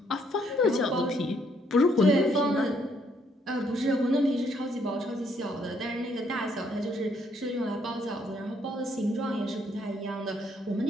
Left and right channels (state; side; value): normal; both; correlation 0.70